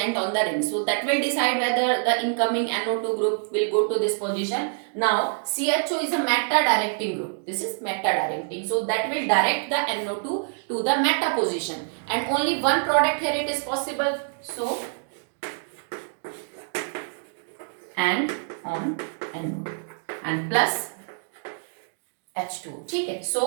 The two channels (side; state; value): left; silent; digital silence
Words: on the ring. So that will decide whether the incoming NO2 group will go to this position. Now CHO is a meta directing group. This is meta directing. So that will direct the NO2 to the meta position, and only one product here it is possible. So and on NO2 and plus H2. ठीक है.